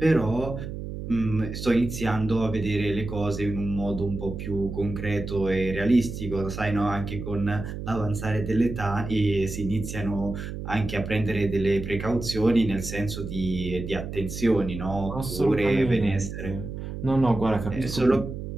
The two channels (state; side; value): noise; right; hum, 7 dB below the sound